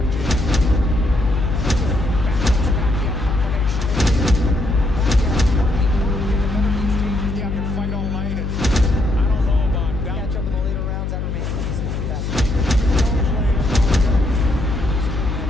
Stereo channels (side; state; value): left; noise; hum, 3 dB below the sound